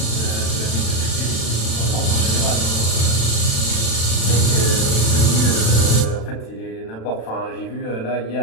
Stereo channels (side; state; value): right; late; 36 ms